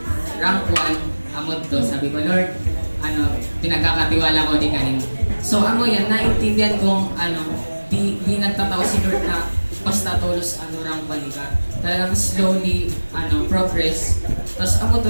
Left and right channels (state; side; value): inverted; both; correlation -1.00